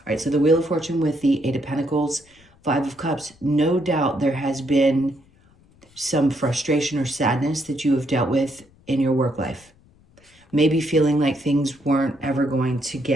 All right, so the Wheel of Fortune with the Eight of Pentacles, Five of Cups. No doubt there has been some frustration or sadness that you have dealt with in your work life. Maybe feeling like things weren't ever going to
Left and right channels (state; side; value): noise; left; rumble, 30 dB below the sound